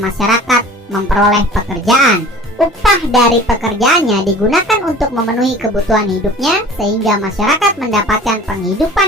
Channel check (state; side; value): normal; both; correlation 0.44